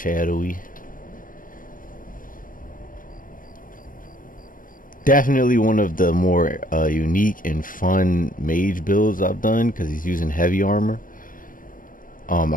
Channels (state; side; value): late; right; 0.40 ms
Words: Definitely one of the more unique and fun mage builds I've done, because he's using heavy armor.